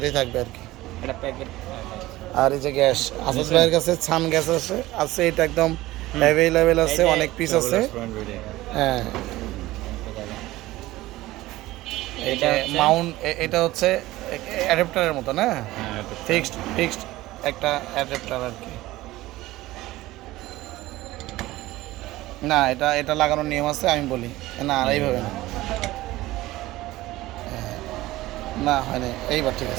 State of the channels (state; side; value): quieter; left; 17.6 dB